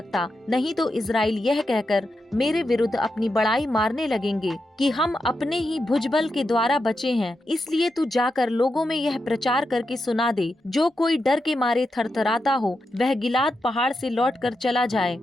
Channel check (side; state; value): both; normal; correlation 0.87